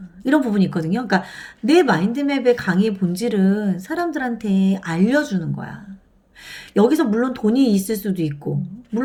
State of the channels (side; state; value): both; identical; correlation 1.00